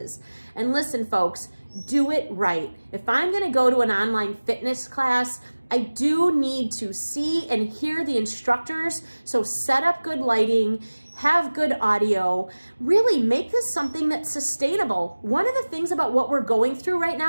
And listen, folks, do it right. If I'm gonna go to an online fitness class, I do need to see and hear the instructors. So set up good lighting, have good audio, really make this something that's sustainable. One of the things about what we're going through right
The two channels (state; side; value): inverted; both; correlation -1.00